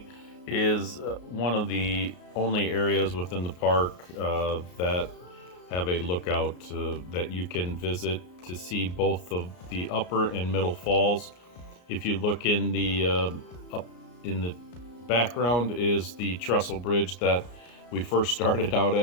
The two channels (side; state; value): right; late; 34 ms